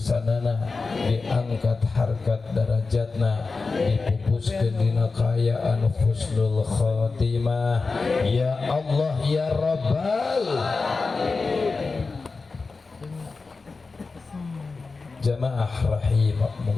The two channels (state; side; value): quieter; right; 4.1 dB